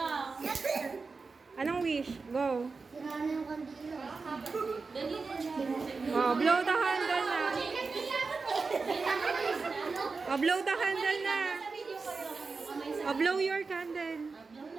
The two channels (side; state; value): left; quieter; 4.4 dB